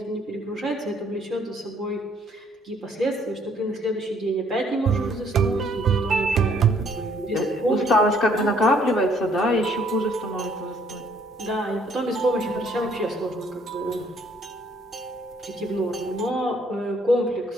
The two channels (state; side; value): normal; both; correlation 0.64